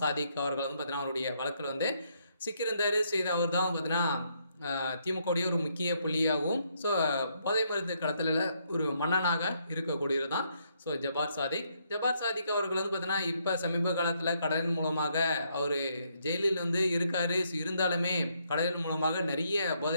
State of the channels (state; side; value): inverted; both; correlation -0.74